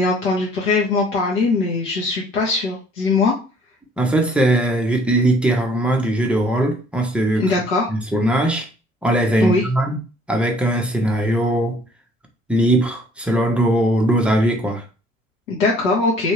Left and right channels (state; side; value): normal; both; correlation 0.58